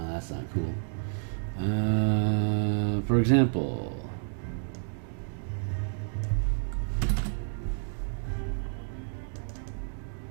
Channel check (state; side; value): silent; left; 58 dB below the other